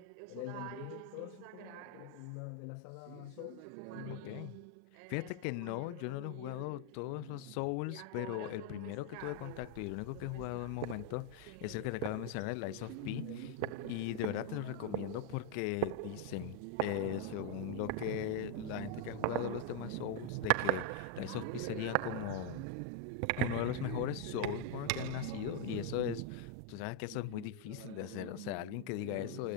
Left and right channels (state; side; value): different; both; correlation 0.01